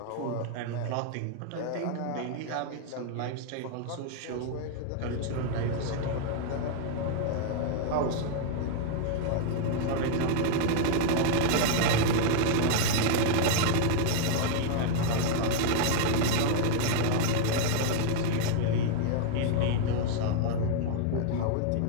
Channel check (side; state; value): both; different; correlation 0.00